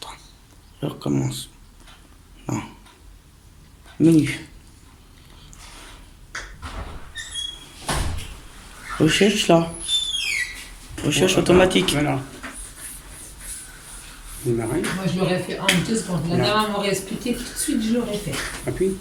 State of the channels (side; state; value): both; identical; correlation 1.00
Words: Je recommence. Non. Menu. Recherche là. Recherche automatique. Voilà. Démarrer. Moi, je l'aurais fait en 2 secondes. La dame m'aurait expliqué tout de suite, je l'aurais fait. Appuie.